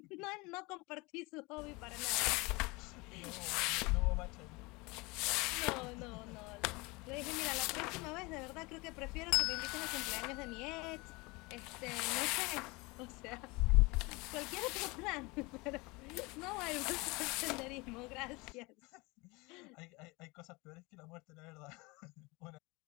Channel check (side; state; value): right; quieter; 25.2 dB